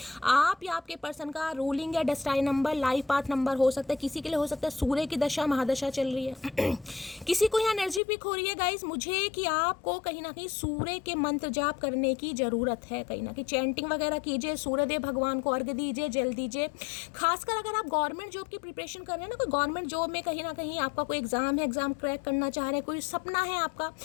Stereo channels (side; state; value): right; drops out; at 8.0 s